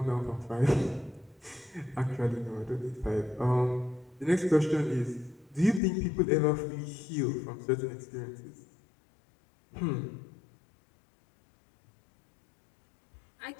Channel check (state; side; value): drops out; right; at 5.8 s